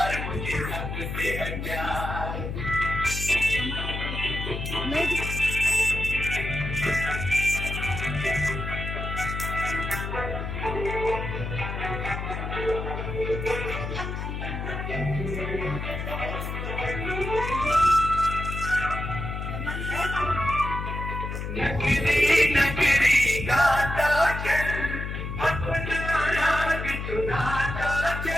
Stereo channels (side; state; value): left; noise; hum, 5 dB below the sound